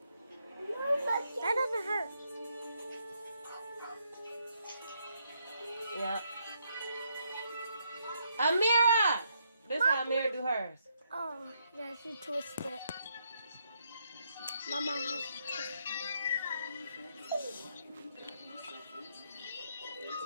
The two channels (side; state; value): both; inverted; correlation -0.76